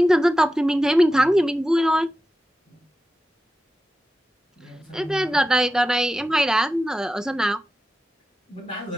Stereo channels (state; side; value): normal; both; correlation 0.92